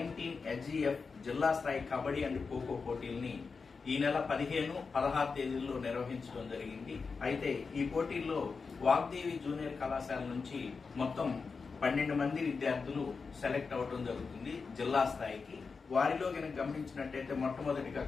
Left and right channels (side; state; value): right; quieter; 4.9 dB